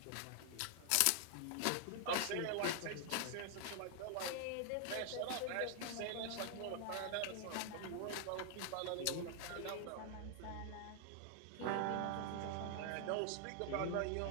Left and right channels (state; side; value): different; both; correlation 0.00